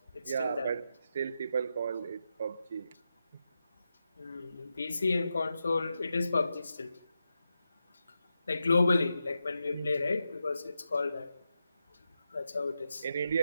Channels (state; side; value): inverted; both; correlation -0.88